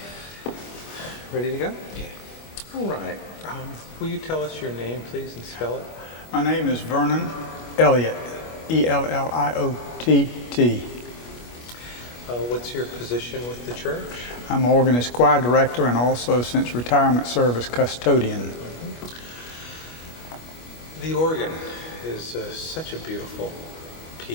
Ready to go? Yeah. All right. Will you tell us your name, please, and spell it? My name is Vernon Elliot, Elliott. What's your position with the church? I'm organist choir director and also, since retirement, service custodian. The organ is such a beautiful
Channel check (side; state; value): right; late; 25 ms